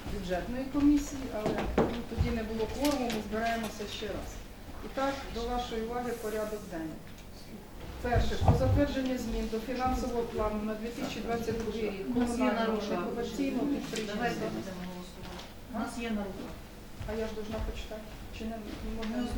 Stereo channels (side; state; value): both; identical; correlation 1.00